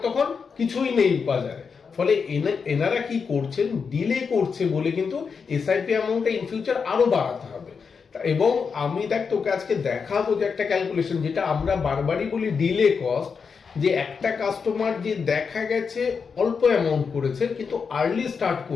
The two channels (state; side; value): quieter; right; 5.7 dB